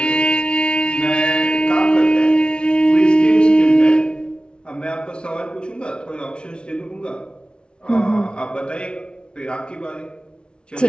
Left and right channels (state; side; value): late; right; 0.056 ms